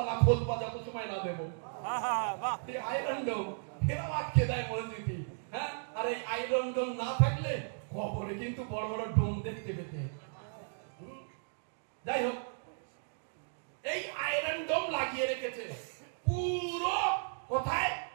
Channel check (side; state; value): left; silent; digital silence